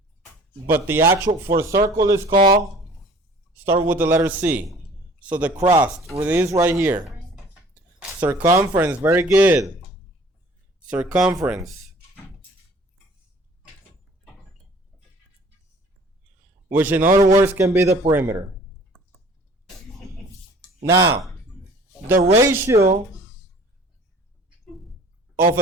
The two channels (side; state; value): both; normal; correlation 0.50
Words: But the actual for circle is called, start with the letter C. So the crust, it is right here. Circumference, very good. Circumference. Which in other words can be the perimeter. Now, the ratio of